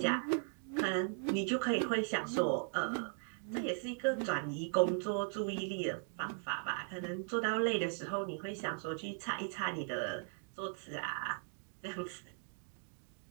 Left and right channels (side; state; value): left; silent; 52 dB below the other